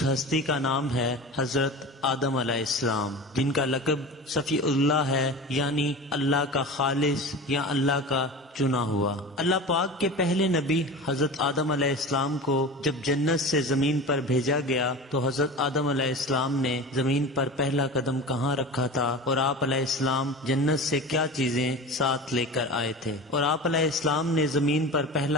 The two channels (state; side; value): normal; both; correlation 0.32